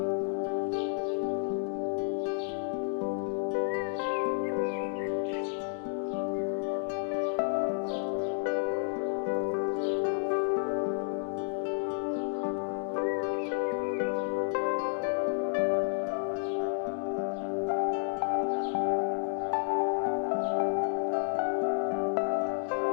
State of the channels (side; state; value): right; silent; 57 dB below the other